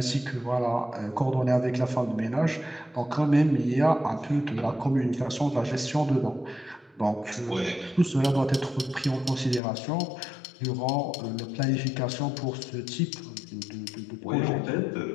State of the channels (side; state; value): right; drops out; at 9.6 s